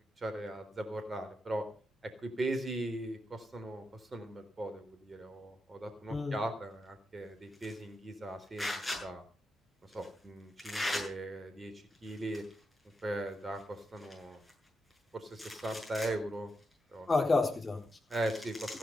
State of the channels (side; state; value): both; normal; correlation 0.86